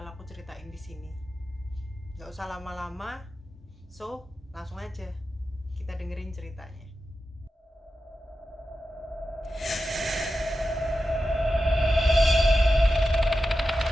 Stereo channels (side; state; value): both; normal; correlation 0.91